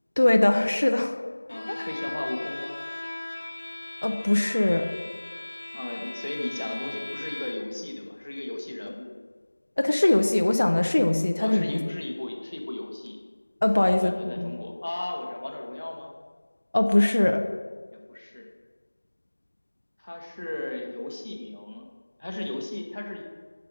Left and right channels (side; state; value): both; inverted; correlation -1.00